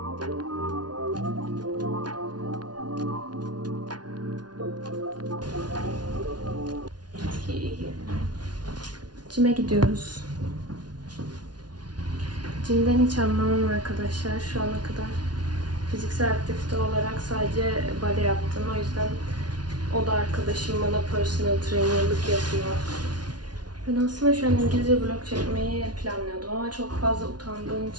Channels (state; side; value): late; left; 0.69 ms